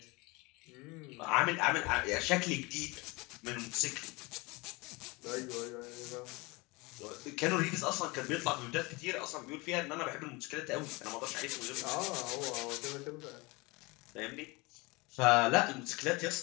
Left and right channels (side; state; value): right; quieter; 25.2 dB